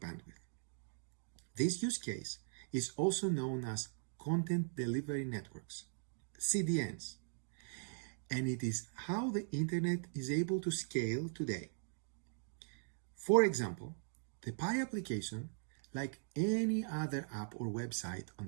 This use case is also known as Content Delivery Networks, CDNs, and it is how the internet is able to scale today. For example, the Pi application, like any other app or website on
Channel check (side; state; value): left; silent; digital silence